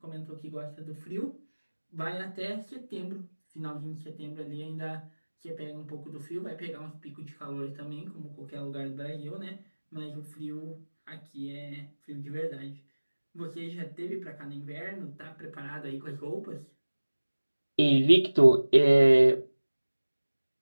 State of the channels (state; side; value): inverted; both; correlation -1.00